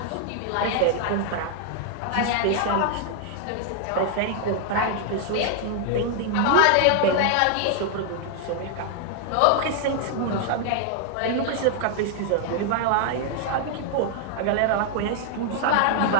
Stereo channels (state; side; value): different; both; correlation 0.00